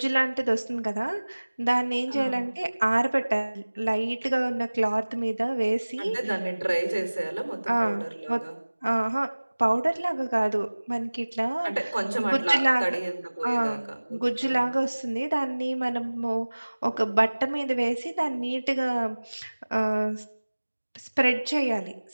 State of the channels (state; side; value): inverted; both; correlation -1.00